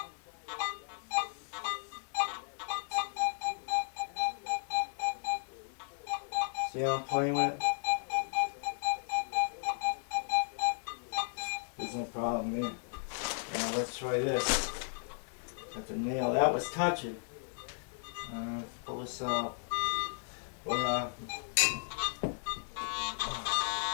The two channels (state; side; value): silent; right; 54 dB below the other